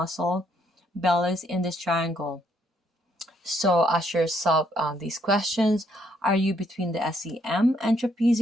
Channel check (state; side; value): normal; both; correlation 0.71